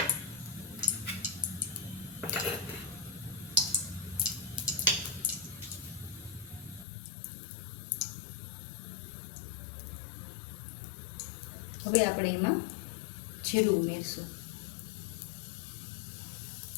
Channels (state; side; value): drops out; right; at 6.9 s